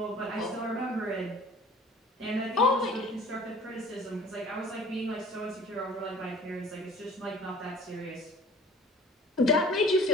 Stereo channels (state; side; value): normal; both; correlation 0.45